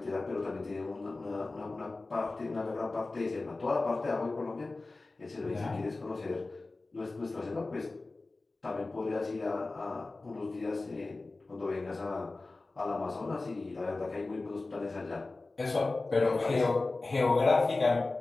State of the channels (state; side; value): quieter; right; 3.3 dB